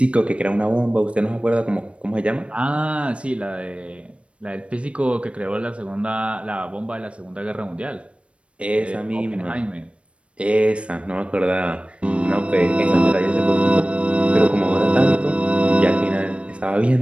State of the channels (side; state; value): left; late; 0.061 ms